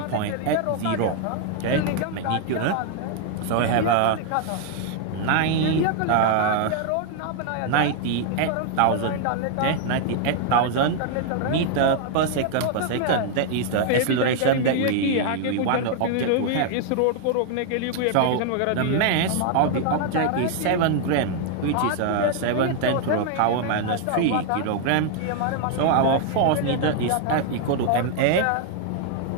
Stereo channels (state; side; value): different; both; correlation 0.00